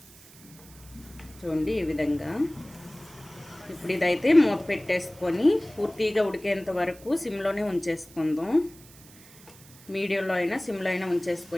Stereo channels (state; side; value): noise; right; hiss, 22 dB below the sound